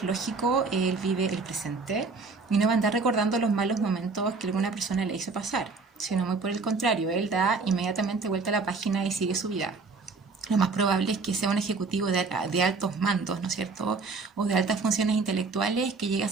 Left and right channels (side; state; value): left; quieter; 4.1 dB